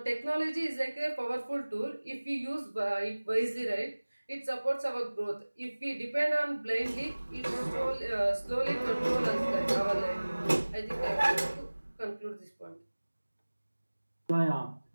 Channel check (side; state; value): both; inverted; correlation -1.00